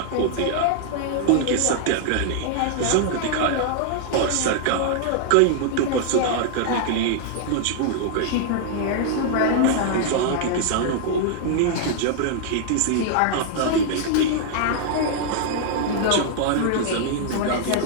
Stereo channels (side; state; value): both; different; correlation -0.01